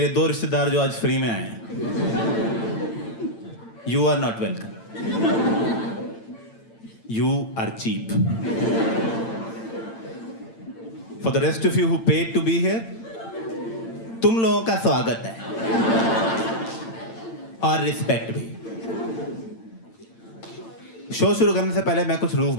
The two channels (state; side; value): late; right; 8.9 ms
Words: दो रिश्तेदार जो आज फ्री में आए हैं। You are not welcome, you are cheap. For the rest of you who paid to be here, तुम लोगों का स्वागत है और रिस्पेक्ट भी। शो शुरू करने से पहले मैं कुछ रूल्स